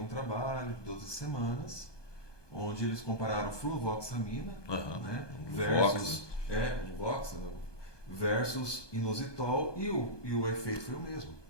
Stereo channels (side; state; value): right; late; 1.2 ms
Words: um trabalho de 12 semanas, onde eles compararam fluvoxamina, né, versus inositol, e o efeito foi o mesmo.